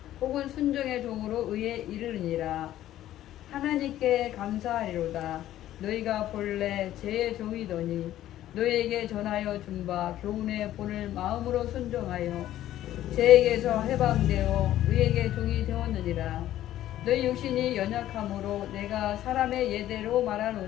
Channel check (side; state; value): right; quieter; 13.1 dB